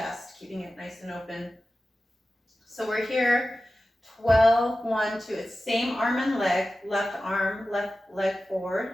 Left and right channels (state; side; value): normal; both; correlation 0.94